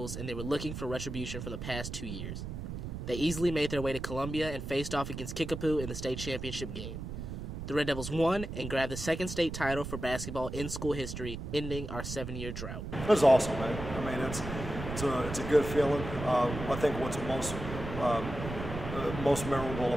and they were looking for retribution for the past 2 years. They easily made their way to Columbia and faced off against Kickapoo in the state championship game. The Red Devils won and grabbed the 2nd state title for basketball in school history, ending our 7-year drought. It was awesome, man. It's a good feeling. I think what's most memorable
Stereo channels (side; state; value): right; noise; rumble, 7 dB below the sound